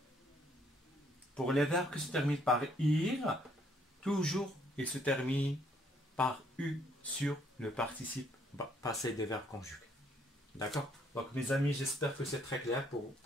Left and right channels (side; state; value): both; normal; correlation 0.67